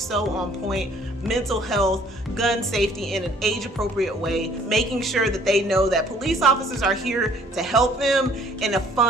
on point: mental health, gun safety in an age-appropriate way, making sure that they know that police officers are here to help them in a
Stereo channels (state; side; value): normal; both; correlation 0.58